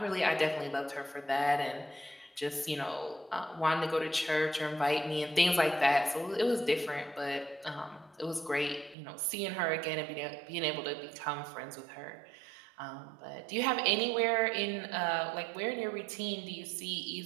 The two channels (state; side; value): drops out; left; at 9.0 s